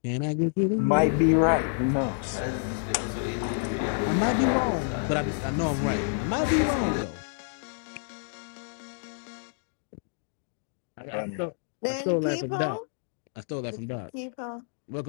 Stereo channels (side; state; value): right; silent; digital silence